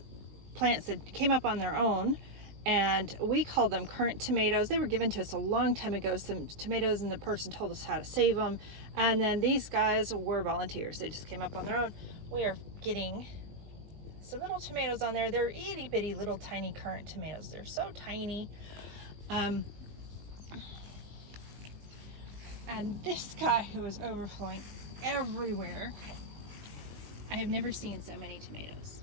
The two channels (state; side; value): late; left; 19 ms